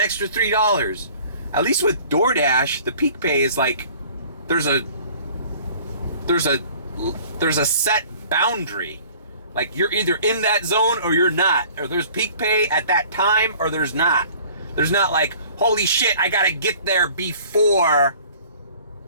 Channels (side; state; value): both; inverted; correlation -0.50